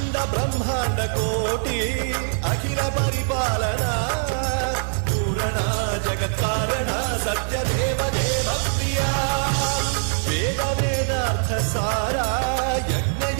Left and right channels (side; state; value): left; silent; 63 dB below the other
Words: బ్రహ్మాండ కోటి అఖిల పరిపాలన పూరణ జగత్కారణ సత్యదేవ దేవ ప్రియా వేద వేదార్థ సారా యజ్ఞ